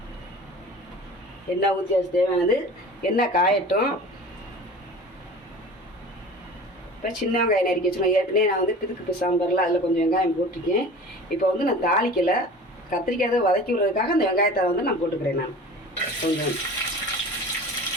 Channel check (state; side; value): normal; both; correlation 0.39